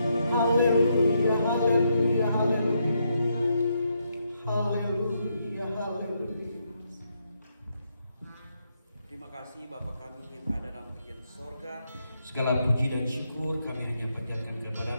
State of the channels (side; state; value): both; inverted; correlation -0.79